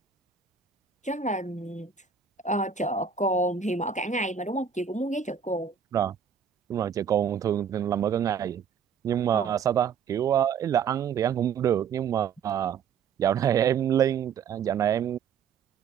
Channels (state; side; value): quieter; left; 6.9 dB